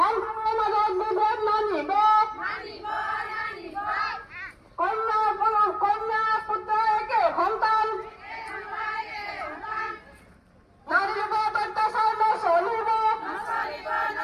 মাজত বিভেদ নানিব, কন্যা পুত্ৰ একে সন্তান, নাৰীৰ ওপৰত অত্যাচাৰ নচলিব,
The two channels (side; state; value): both; identical; correlation 1.00